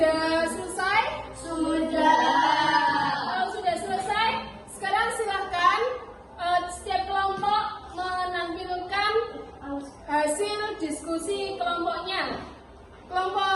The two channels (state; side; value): identical; both; correlation 1.00